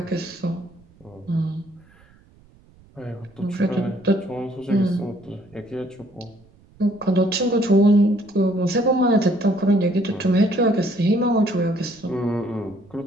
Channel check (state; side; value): noise; right; rumble, 28 dB below the sound